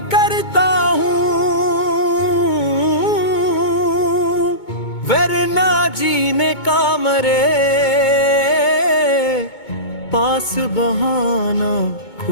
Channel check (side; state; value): right; late; 2.2 ms